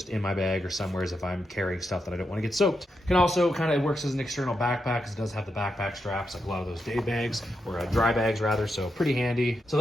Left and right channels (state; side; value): normal; both; correlation 0.85